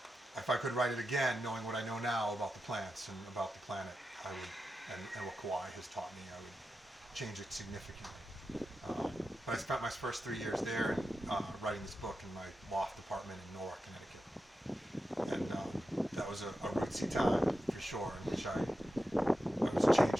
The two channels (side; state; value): both; normal; correlation 0.90